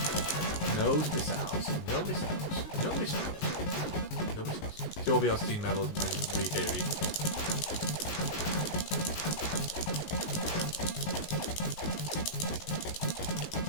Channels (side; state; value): right; late; 19 ms